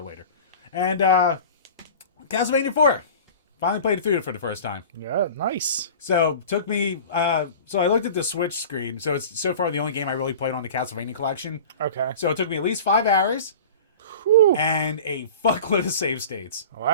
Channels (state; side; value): inverted; both; correlation -0.38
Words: later. And Castlevania 4. Finally played it through for the first time. Yeah, nice. So took me. So I looked at the Switch screen. So it's so far the only game I really played on the Castlevania collection. Okay. So it took me at least 5 hours. Whew. And a fuckload of save states.